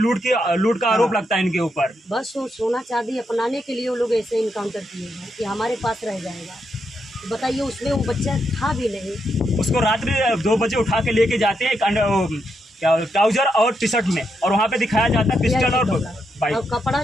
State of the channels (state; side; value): normal; both; correlation 0.81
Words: का आरोप लगता है इनके ऊपर। बस वो सोना चांदी अपनाने के लिए वो लोग ऐसे इनकाउंटर किए हैं कि हमारे पास रह जाएगा। तो बताइए, उसमें वो बच्चा था भी नहीं। उसको रात्रि 2 बजे उठा के लेके जाते हैं ट्राउजर और टी शर्ट में, और वहाँ पे दिखाया जाता है पिस्टल और बाइक। और कपड़ा